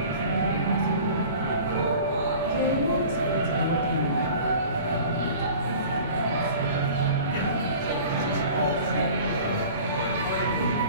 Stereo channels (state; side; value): inverted; both; correlation -0.43